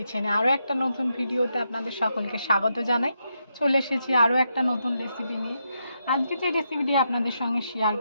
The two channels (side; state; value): both; inverted; correlation -0.82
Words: আরও একটা নতুন ভিডিওতে আপনাদের সকলকে স্বাগত জানাই। চলে এসেছি আরও একটা নতুন রেসিপি নিয়ে। আজকে যে রেসিপিটি আপনাদের সঙ্গে শেয়ার